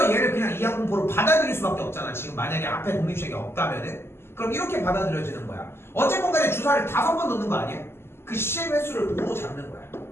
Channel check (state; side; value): late; right; 0.12 ms